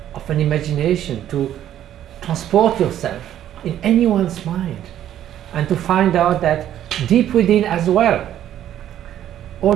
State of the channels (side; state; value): left; quieter; 11.4 dB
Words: of an imagination to transport yourself in anyone's mind and to find out that deep within as well,